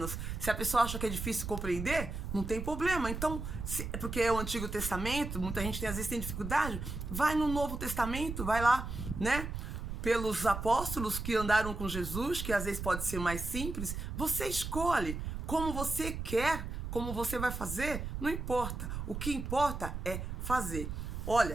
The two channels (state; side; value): noise; right; rumble, 5 dB below the sound